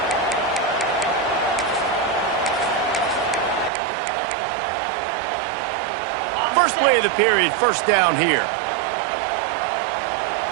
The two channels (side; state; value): left; drops out; at 3.7 s